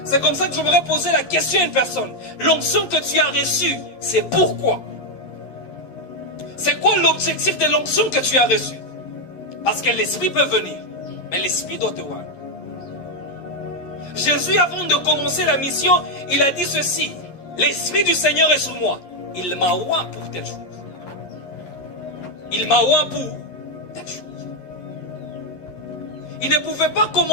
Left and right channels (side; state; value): right; late; 11 ms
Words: C'est comme ça que je voudrais poser la question à une personne. L'onction que tu as reçue, c'est pourquoi? C'est quoi l'objectif de l'onction que tu as reçue? Parce que l'Esprit peut venir, mais l'Esprit doit te voir. Jésus, avant de commencer la mission, il a dit ceci. L'Esprit du Seigneur est sur moi. Il m'a oint pour telle chose. Il m'a oint pour telle chose. Il ne pouvait pas